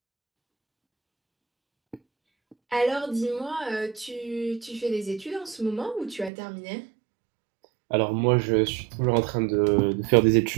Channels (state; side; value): drops out; left; at 6.3 s